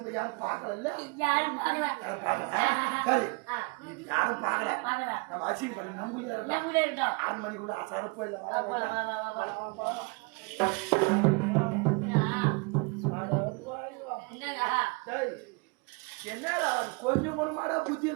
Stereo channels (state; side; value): quieter; left; 30.1 dB